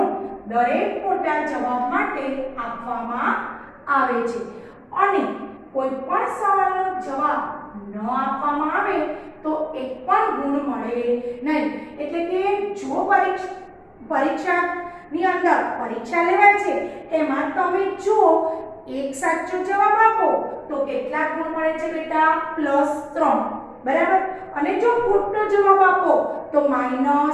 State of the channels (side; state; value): both; identical; correlation 1.00